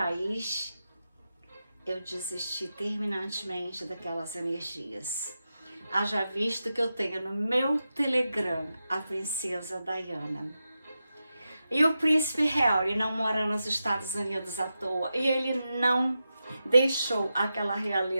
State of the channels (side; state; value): both; inverted; correlation -0.90